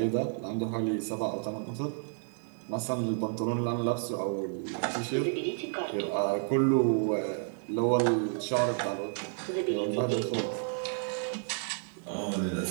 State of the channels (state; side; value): silent; left; 57 dB below the other